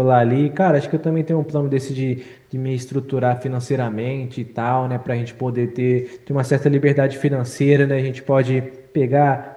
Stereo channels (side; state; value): both; identical; correlation 1.00